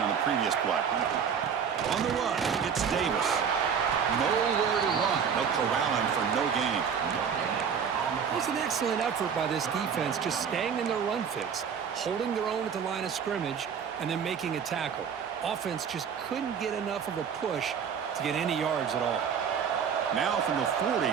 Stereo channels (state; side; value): quieter; left; 7.1 dB